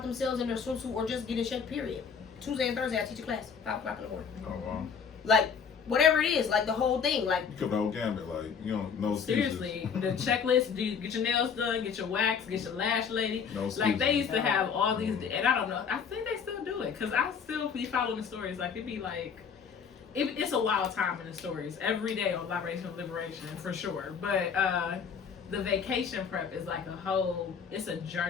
themselves in their swimsuit or just get in shape, period. Tuesday and Thursday, I teach a class, 5 o'clock in the morning. Oh, wow. Like, whatever it is, like the whole thing, like. You cover the whole gambit, like, you don't know. Seriously, the checklist, do you get your nails done, get your wax, get your lash lady. No like, they used to have all these, and I don't know, I think they still do it, because I still be following the stories. Like, it'd be like, it's a wild time in the stories every day on Libation Liberation, for sure. But the vacation prep is like it's a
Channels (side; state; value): right; quieter; 6.5 dB